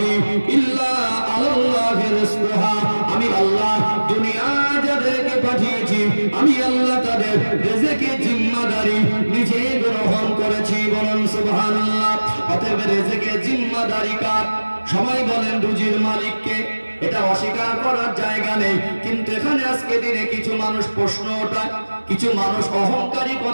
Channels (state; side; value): inverted; both; correlation -1.00